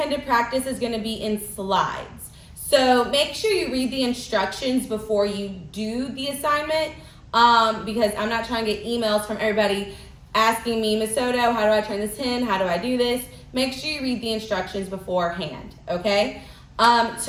practice is going to be in slides. So make sure you read the instructions before you do the assignment, because I'm not trying to get emails from everybody asking me, Ms. Soto, how do I turn this in? How do I do this? Make sure you read the instructions beforehand, okay?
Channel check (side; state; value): both; identical; correlation 1.00